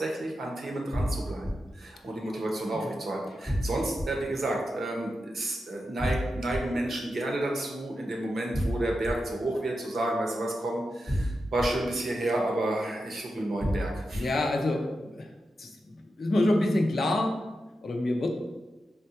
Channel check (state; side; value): normal; both; correlation 0.89